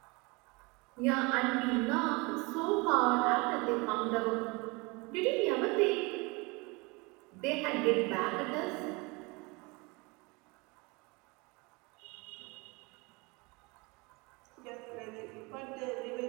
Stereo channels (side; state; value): left; quieter; 26.8 dB